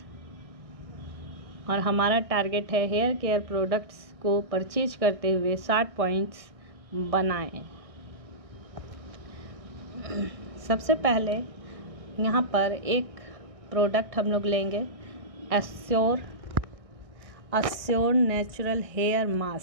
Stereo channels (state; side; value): late; left; 1.6 ms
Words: और हमारा टारगेट है हेयर केयर प्रोडक्ट्स को परचेज करते हुए 60 पॉइंट्स बनाएं। सबसे पहले यहाँ पर एक प्रोडक्ट हम लोग लेंगे, अस्योर नेचुरल हेयर